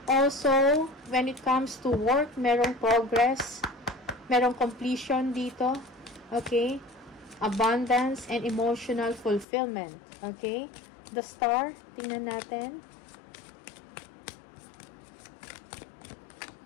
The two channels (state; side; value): drops out; right; at 9.5 s